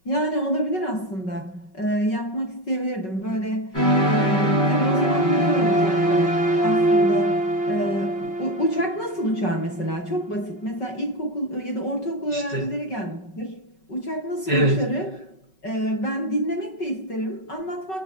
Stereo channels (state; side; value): late; right; 5.3 ms